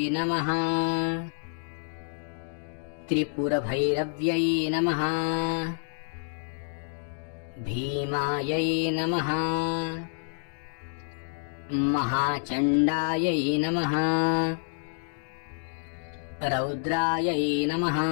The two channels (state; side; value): silent; right; digital silence